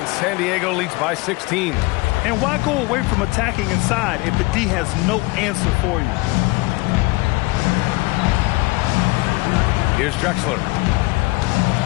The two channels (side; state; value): right; quieter; 23.5 dB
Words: San Diego leads by 16. And why go away from attacking inside if the D has no answer for you? Here's Drexler.